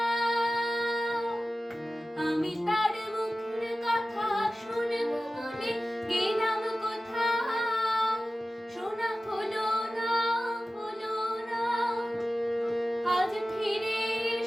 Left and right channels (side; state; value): both; normal; correlation 0.95